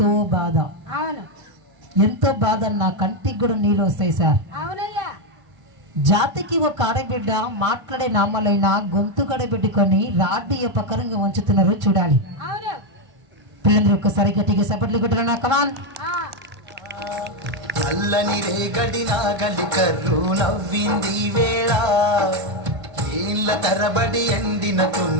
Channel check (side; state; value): left; late; 1.5 ms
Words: బాధ, అవును ఎంతో బాధ. నా కంటికి కూడా నీళ్ళు వస్తాయి సార్. అవునయ్యా జాతికి ఒక ఆడబిడ్డ మాట్లాడే నామాలైన గొంతు కడబెట్టుకొని రాడ్డి ఉపకరంగా ఉంచుతున్నారు చూడాలి. అవును పిల్లలు ఒక్కసారి గట్టిగా సపట్లు కొట్టరా కమాన్. ఆ, నల్లని రేగడి నాగలి కర్రు నవ్వింది వేళ, ఏళ్ళ తరబడి ఎండిన